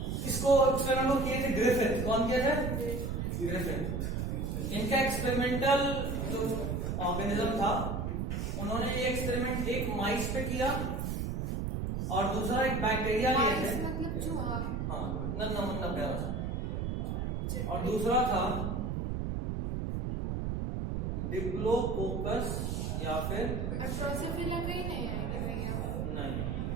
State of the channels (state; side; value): noise; right; rumble, 1 dB below the sound